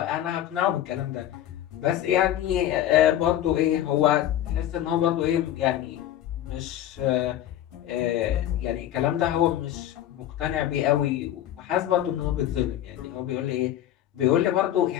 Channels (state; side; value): quieter; right; 12.1 dB